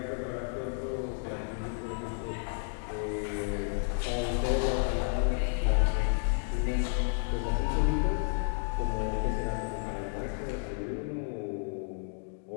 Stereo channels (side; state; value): right; silent; digital silence